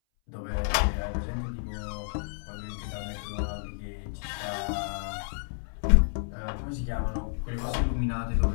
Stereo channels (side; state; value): right; silent; 58 dB below the other